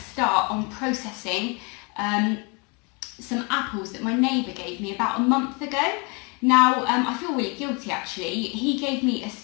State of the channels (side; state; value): right; quieter; 31.3 dB